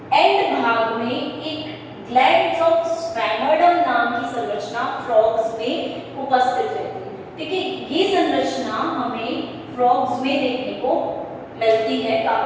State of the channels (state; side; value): identical; both; correlation 1.00